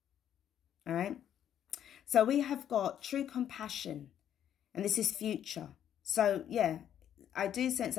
All right. So we have got true compassion, and this is future. So yeah, I do sense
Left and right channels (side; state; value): right; quieter; 10.0 dB